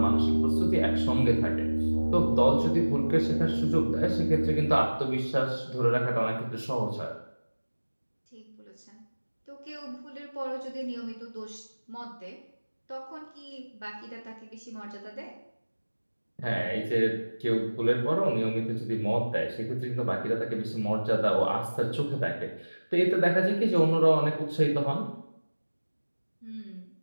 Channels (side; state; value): both; inverted; correlation -1.00